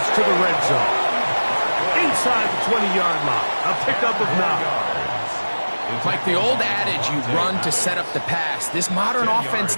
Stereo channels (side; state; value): both; inverted; correlation -1.00